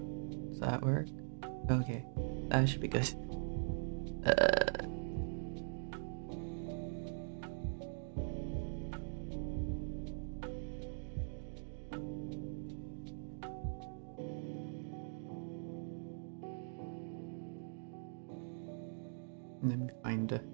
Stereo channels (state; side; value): silent; left; digital silence